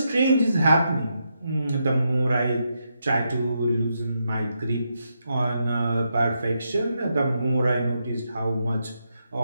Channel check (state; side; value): inverted; both; correlation -0.82